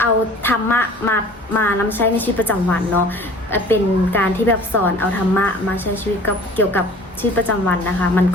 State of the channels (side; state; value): both; normal; correlation 0.47